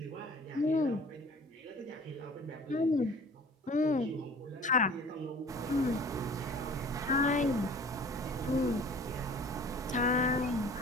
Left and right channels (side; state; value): both; normal; correlation 0.46